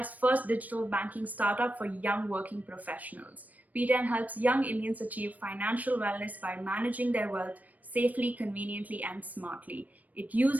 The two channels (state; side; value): late; left; 0.076 ms